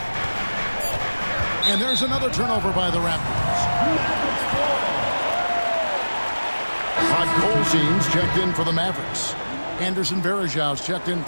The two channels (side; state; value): both; inverted; correlation -1.00